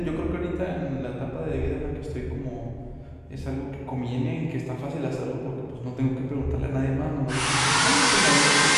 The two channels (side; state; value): both; identical; correlation 1.00